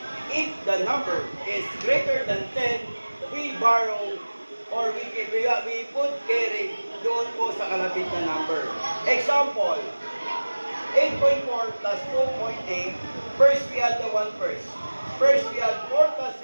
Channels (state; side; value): inverted; both; correlation -1.00